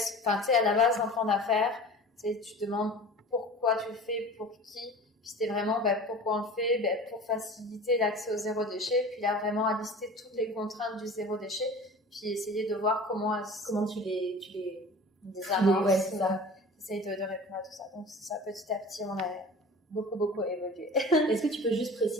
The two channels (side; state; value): both; normal; correlation 0.39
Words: à la base d'un plan d'affaires, tu te demandes pourquoi tu le fais, pour qui. Puis c'était vraiment pourquoi on le fait, pour faciliter l'accès au zéro déchet. Puis là, vraiment à lister toutes les contraintes du zéro déchet. Puis essayer de voir comment tu les amorces. Ouais, c'est ça. Essaye de répondre à tout ça. Donc c'est ça, petit à petit, on a beaucoup évolué. Est-ce que tu peux juste